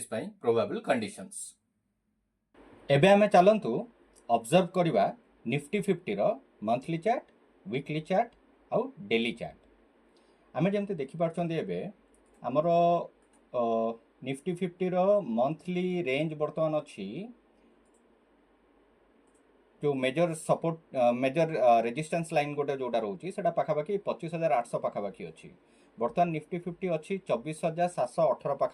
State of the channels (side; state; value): both; identical; correlation 1.00